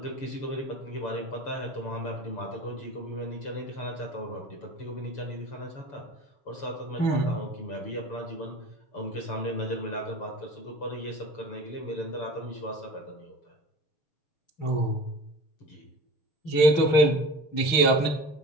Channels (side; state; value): right; late; 6.4 ms